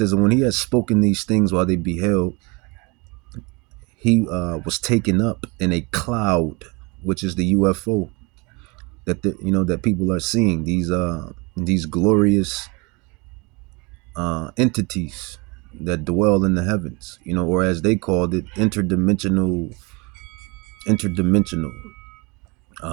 and when he had spoken these things while they beheld, he was taken up in a cloud, which is the UFO that people are seeing, these glorious entities that dwell in the heavens, or as they called it, interdimensional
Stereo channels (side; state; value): left; quieter; 28.0 dB